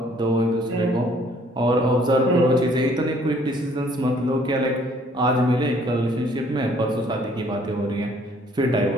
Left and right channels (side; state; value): both; normal; correlation 0.60